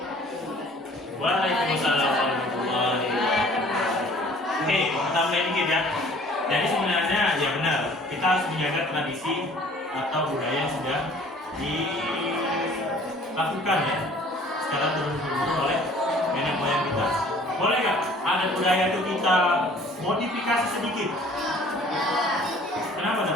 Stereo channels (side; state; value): both; normal; correlation 0.52